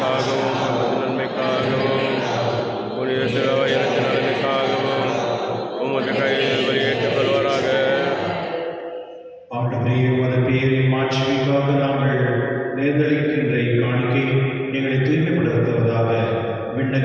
நமது நன்மைக்காகவும் புனித திருவயத்தின் நலனுக்காகவும் உமது கையில் வெளியேற்றுக் கொள்வாராக. ஆண்டவரே, உமது பெயரின் மாட்சிமைக்காக நாங்கள் நேர்ந்தளிக்கின்ற காணிக்கை எங்களை தூய்மைப்படுத்துவதாக.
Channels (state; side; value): identical; both; correlation 1.00